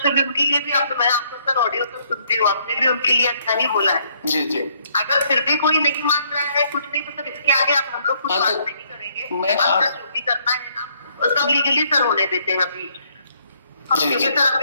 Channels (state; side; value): inverted; both; correlation -0.68